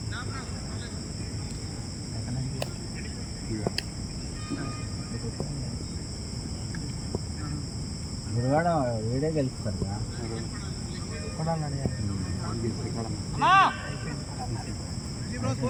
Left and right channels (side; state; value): both; identical; correlation 1.00